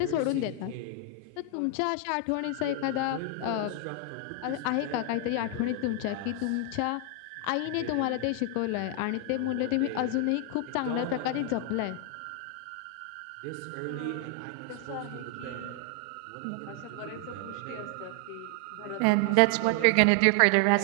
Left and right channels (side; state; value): both; different; correlation 0.00